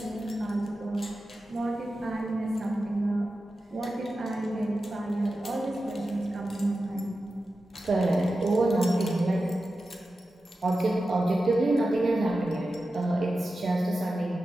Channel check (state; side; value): normal; both; correlation 0.92